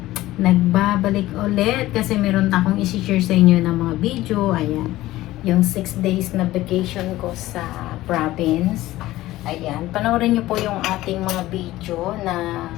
nagbabalik ulit kasi meron akong isi-share sa inyo ng mga video. Ayan. Yung 6 days na vacation ko sa province. Ayan. Panoorin nyo po yung ating mga video na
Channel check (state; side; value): quieter; right; 16.4 dB